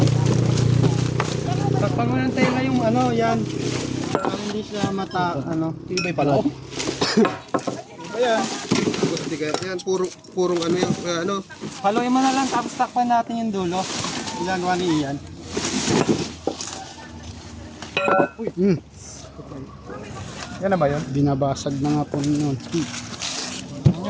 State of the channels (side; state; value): both; identical; correlation 1.00